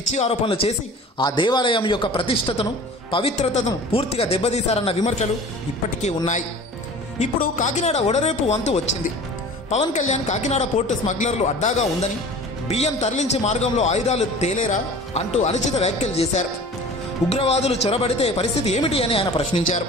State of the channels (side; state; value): both; normal; correlation 0.41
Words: ఆరోపణలు చేసి ఆ దేవాలయం యొక్క ప్రతిష్టతను, పవిత్రతను పూర్తిగా దెబ్బతీశారన్న విమర్శలు ఇప్పటికీ ఉన్నాయి. ఇప్పుడు కాకినాడ ఓడరేపు వంతు వచ్చింది. పవన్ కళ్యాణ్ కాకినాడ పోర్టు స్మగ్లర్లు అడ్డాగా ఉందని, బియ్యం తరలించే మార్గంలో ఆయుధాలు తేలేరా అంటూ అనుచిత వ్యాఖ్యలు చేశారు. ఉగ్రవాదులు చొరబడితే పరిస్థితి ఏమిటి అని ఆయన ప్రశ్నించారు.